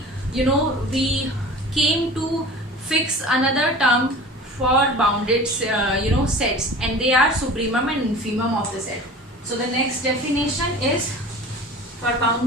came to fix another term for bounded sets, and they are supremum and infimum of the set. So the next definition is for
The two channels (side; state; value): both; normal; correlation 0.39